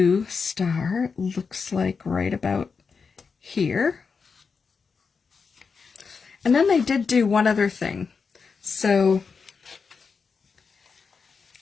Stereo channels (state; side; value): quieter; right; 5.3 dB